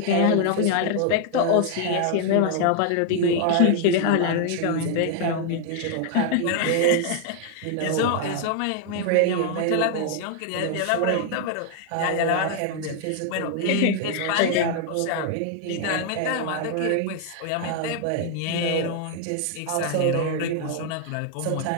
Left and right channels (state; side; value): different; both; correlation 0.00